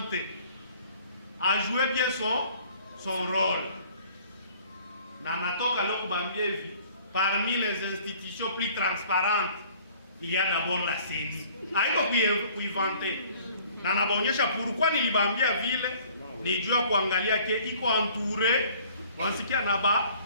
a joué bien son rôle. Na natoka leo kubambia hivi, parmi les institutions plus transparentes, il y a d'abord la CENI. Haiko kuinventer. Na nabaonyesha pourquoi nilibambia vile, nijua kuangalia ke iko entouré, wansikia na ba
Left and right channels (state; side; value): inverted; both; correlation -0.54